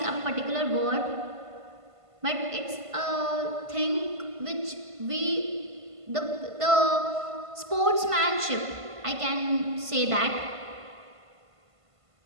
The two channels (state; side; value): late; left; 1.5 ms